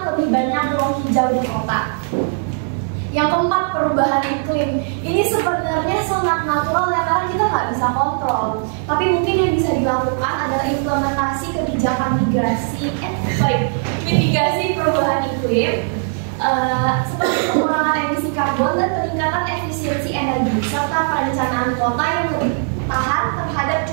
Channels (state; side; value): silent; left; 58 dB below the other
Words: lebih banyak ruang hijau di kota. Yang keempat, perubahan iklim. Ini sebenarnya sangat natural ya, karena kita nggak bisa kontrol. Tapi mungkin yang bisa dilakukan adalah implementasi kebijakan mitigasi perubahan iklim, seperti pengurangan emisi karbon dan peningkatan efisiensi energi, serta perencanaan kota yang lebih tahan terhadap